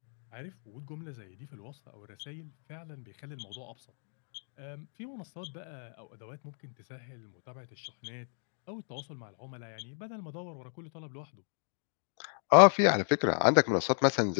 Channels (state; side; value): silent; right; 56 dB below the other